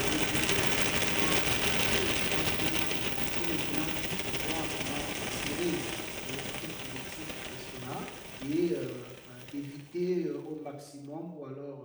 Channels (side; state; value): both; identical; correlation 1.00